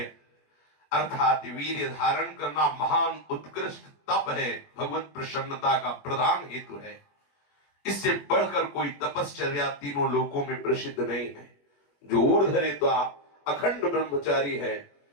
अर्थात वीर्य धारण करना महान उत्कृष्ट तप है, भगवत प्रसन्नता का प्रधान हेतु है। इससे बढ़कर कोई तपश्चर्या तीनों लोकों में प्रसिद्ध नहीं है। जो ऊर्ध्वरेत्वा अखंड ब्रह्मचारी है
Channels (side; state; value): right; late; 21 ms